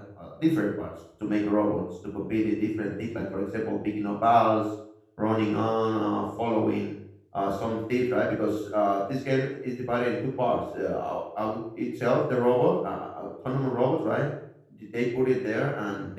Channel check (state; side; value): identical; both; correlation 1.00